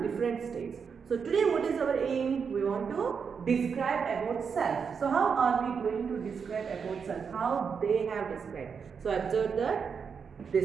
different states. So today what is our aim? We want to describe about self. So how are we going to describe about self? How they have described. So observe that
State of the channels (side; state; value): left; quieter; 6.2 dB